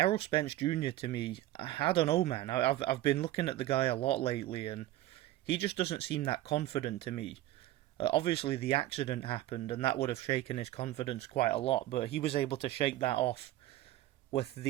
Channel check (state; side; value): quieter; left; 15.0 dB